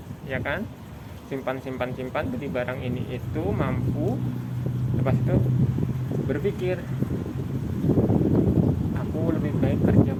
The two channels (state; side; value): identical; both; correlation 1.00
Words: ya kan, simpan beli barang ini itu mampu. Lepas itu berpikir aku lebih baik kerja